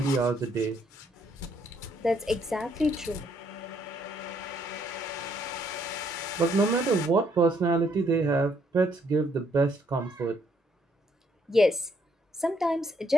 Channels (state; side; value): normal; both; correlation 0.70